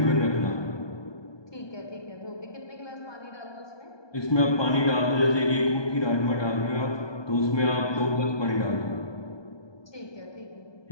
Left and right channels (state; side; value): late; right; 1.2 ms